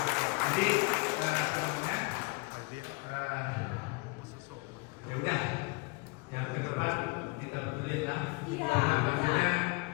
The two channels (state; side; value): quieter; right; 27.1 dB